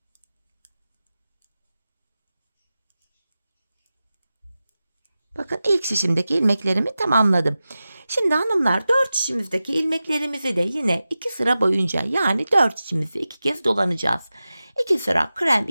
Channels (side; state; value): both; inverted; correlation -0.94